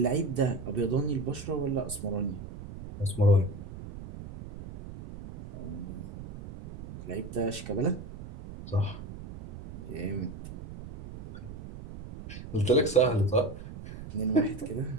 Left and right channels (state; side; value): noise; right; rumble, 12 dB below the sound